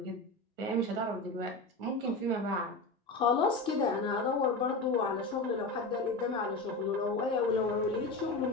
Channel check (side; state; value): right; quieter; 3.0 dB